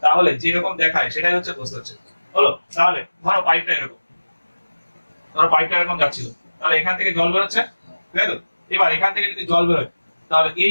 তাহলে যেরকম দেখায় সেটাই হচ্ছে প্রস্থচ্ছেদ হলো তাহলে ধরো পাইপটা এরকম যাচ্ছিল তাহলে এখান থেকে জল বেরোচ্ছে তাই তো এবার এখান থেকে যদি জল বেরোয় তাহলে এই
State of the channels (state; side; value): inverted; both; correlation -1.00